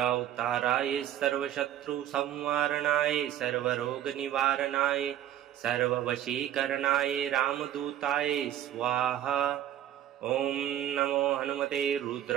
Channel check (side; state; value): left; quieter; 11.6 dB